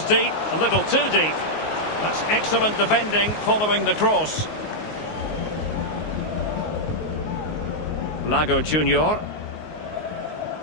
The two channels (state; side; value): late; right; 19 ms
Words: deep, a little too deep. That's excellent defending following the cross. Lago Junior.